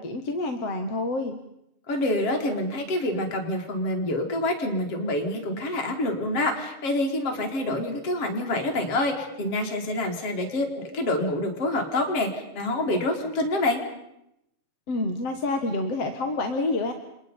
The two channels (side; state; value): right; late; 7.4 ms